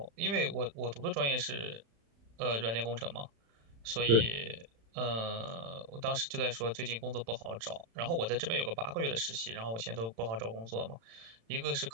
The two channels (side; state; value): left; late; 35 ms